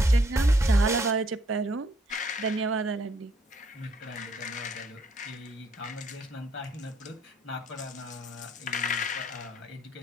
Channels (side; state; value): both; normal; correlation 0.67